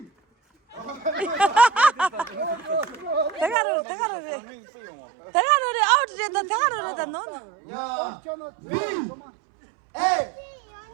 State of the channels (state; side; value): drops out; left; at 3.6 s